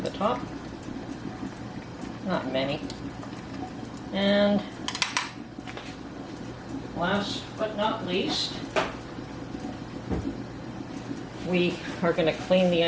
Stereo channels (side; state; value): both; identical; correlation 1.00